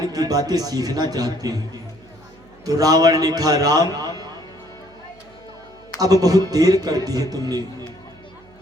की बातें सीखना चाहते हैं। तो रावण ने कहा, राम अब बहुत देर कर दी है तुमने,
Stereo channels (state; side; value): noise; right; hum, 27 dB below the sound